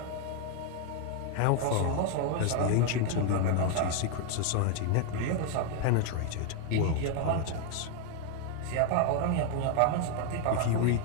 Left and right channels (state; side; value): different; both; correlation 0.01